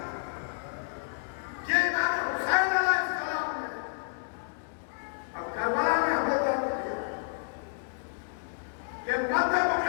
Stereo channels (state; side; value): silent; right; digital silence